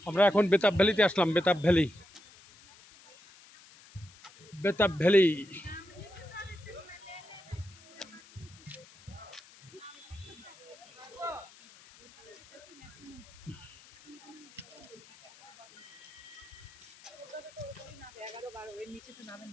আমরা এখন বেতাব ভ্যালিতে আসলাম। Betaab valley, Betaab valley.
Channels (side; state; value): left; noise; hiss, 22 dB below the sound